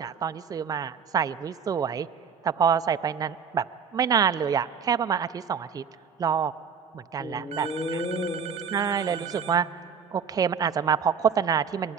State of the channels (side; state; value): left; quieter; 6.6 dB